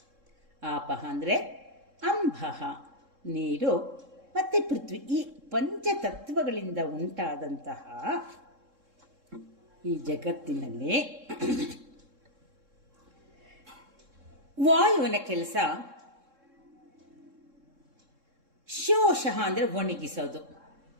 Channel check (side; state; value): left; late; 3.7 ms